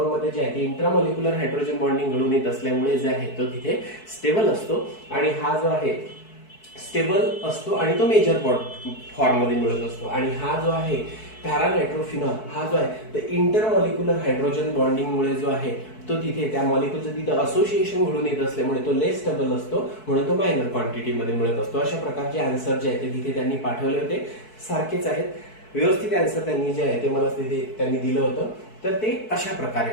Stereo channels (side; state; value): right; late; 4.6 ms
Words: मध्ये जे आहे ते इंट्रामॉलिक्युलर हायड्रोजन बॉन्डिंग घडून येत असल्यामुळे जे आहे तो तिथे स्टेबल असतो आणि हा जो आहे स्टेबल असतो आणि तो मेजर फॉर्म मध्ये मिळत असतो. आणि हा जो आहे पॅरानायट्रोफिनॉल हा जो आहे तर इंटरमॉलिक्युलर हायड्रोजन बॉन्डिंग मुळे जो आहे तो तिथे त्या मॉलिक्यूलचं तिथे असोसिएशन घडून येत असल्यामुळे तो लेस स्टेबल असतो, म्हणून तो मायनर क्वांटिटी मध्ये मिळत असतो. अशा प्रकारचे आन्सर जे आहे ते तिथे त्यांनी पाठवले होते, सारखेच आहेत, व्यवस्थित आन्सर त्यांनी जे आहे ते मला तिथे त्यांनी दिलं होतं. तर ते अशा